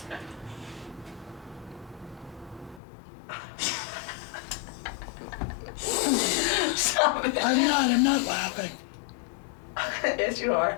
Stop it. I'm not laughing. Yes, you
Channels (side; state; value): right; drops out; at 2.8 s